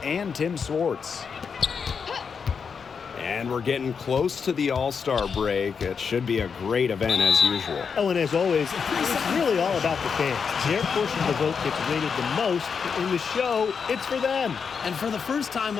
and Tim Swartz. And we're getting close to the All-Star break. It should be a great event as usual. Oh, and as always, it's really all about the fans. Their portion of the vote gets rated the most. In the show, it's for them. And for the first time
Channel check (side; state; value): right; quieter; 6.1 dB